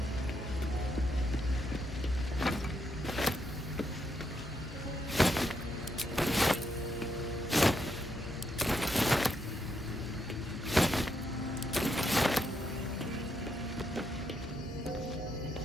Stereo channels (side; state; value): both; normal; correlation 0.79